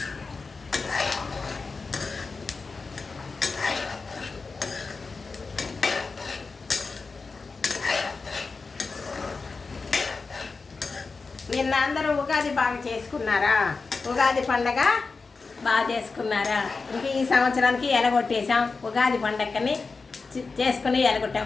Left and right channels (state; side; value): quieter; right; 4.3 dB